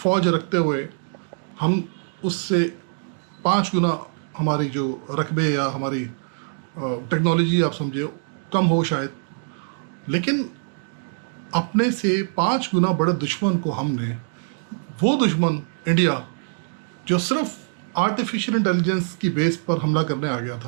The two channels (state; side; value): silent; left; digital silence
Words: रखते हुए हम उससे 5 गुना हमारी जो रकबे या हमारी टेक्नोलॉजी आप समझे कम हो शायद, लेकिन अपने से 5 गुना बड़े दुश्मन को हमने, वो दुश्मन इंडिया जो सिर्फ आर्टिफिशियल इंटेलिजेंस की बेस पर हमला करने आ गया